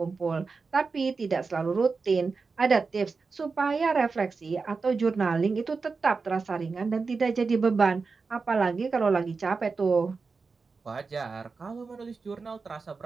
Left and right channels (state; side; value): quieter; left; 4.6 dB